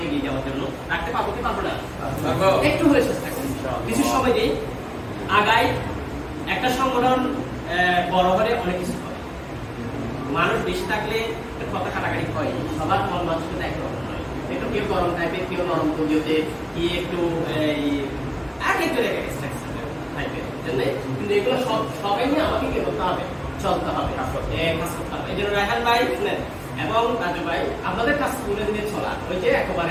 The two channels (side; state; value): both; identical; correlation 1.00